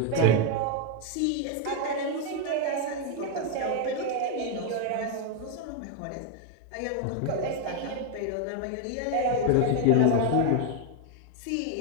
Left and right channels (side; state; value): both; different; correlation 0.01